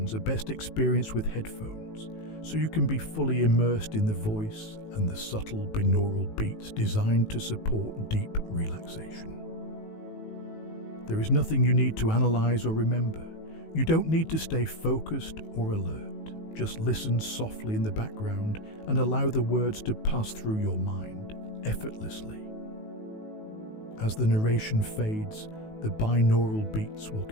are best experienced with headphones, so you can be fully immersed in the voice and the subtle binaural beats designed to support deep relaxation. There is nothing you need to analyze or remember. You don't need to stay focused or alert. Just listen softly in the background and allow the words to pass through your mind effortlessly. As the narration fades, the binaural beats will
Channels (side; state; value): right; late; 19 ms